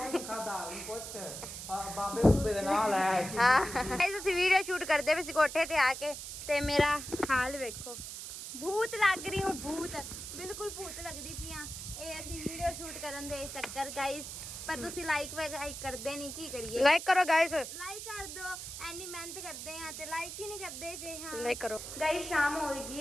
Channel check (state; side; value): noise; right; hiss, 8 dB below the sound